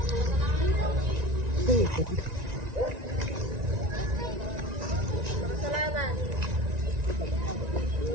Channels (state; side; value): late; left; 1.9 ms